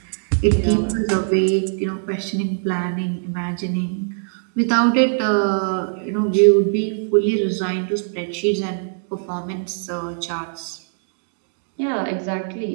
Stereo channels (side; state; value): left; silent; digital silence